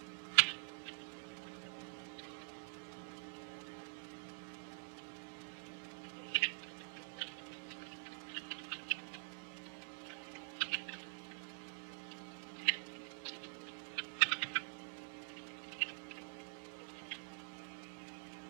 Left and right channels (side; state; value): left; silent; digital silence